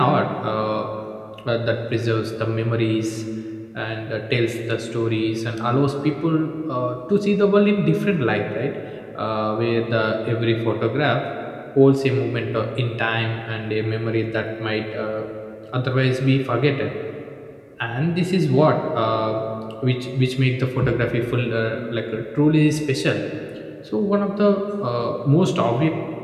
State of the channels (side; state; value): both; identical; correlation 1.00